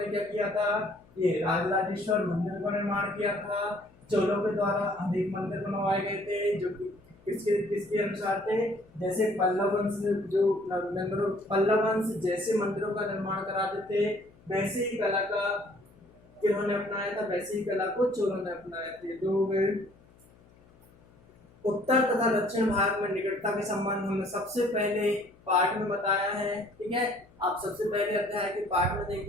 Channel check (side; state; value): left; noise; hum, 27 dB below the sound